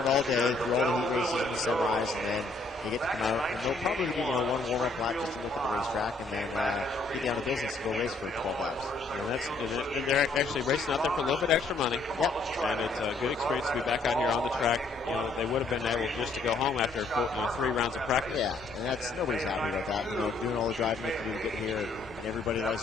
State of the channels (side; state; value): right; quieter; 3.3 dB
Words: all day through all the heat races and semis, and then they get to come out, and they'll probably do one warm-up lap just to look at the racetrack, and then get down to business and go race for 12 hours. And they're actually racing out there for a little bit extra money. Yep. And it's a good experience to be back out here on the track. They would have been able just to go home after 3 rounds of practice. Yeah, and nobody's happy about that. Doing all the driving to get here, and everybody